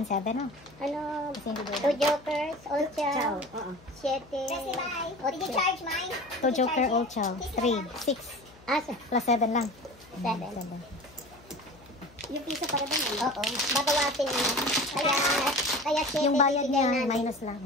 7. Oh. Ano? Kasi hindi Two doon. jokers, old chow. Siete. Did you charge mine? 2 joker, old chow. 3, 6. Ah, Plus 7 lang. Seven. 7. yung piso para doon. Oo. Babawasin mo. Kaya siete Yung bayad bibigay niya, namin. minus lang.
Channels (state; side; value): noise; left; hum, 24 dB below the sound